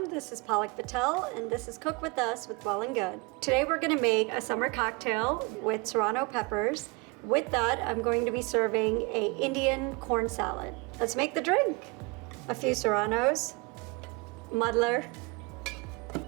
this is Palak Patel and this is Cook With Us with Well+Good. Today we're going to make a summer cocktail with Serrano peppers. With that, I'm going to be serving a Indian corn salad. Let's make the drink. A few Serranos, muddler,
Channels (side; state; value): left; quieter; 27.7 dB